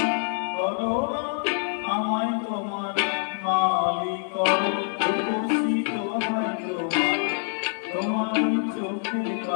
করো না আমায় তোমার মালিক করো। রূপসী দোহাই তোমায়, তোমার ওই চোখের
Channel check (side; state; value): right; silent; 61 dB below the other